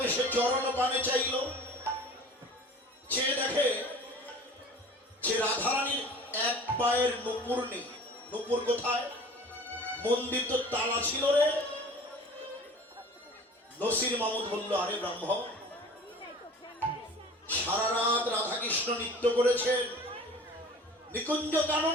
সে চরণ পানে চাইল, চেয়ে দেখে যে রাধারানীর এক পায়ের নুপুর নেই। নুপুর কোথায়? মন্দির তো তালা ছিল রে। নসির মামুদ বলল, আরে ব্রাহ্মণ সারা রাত রাধাকৃষ্ণ নৃত্য করেছেন নিকুঞ্জ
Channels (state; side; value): normal; both; correlation 0.43